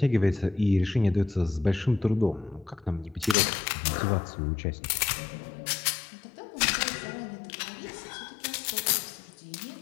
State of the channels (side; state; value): right; drops out; at 3.4 s